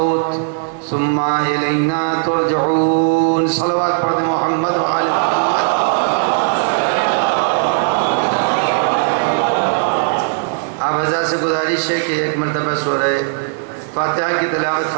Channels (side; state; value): left; silent; digital silence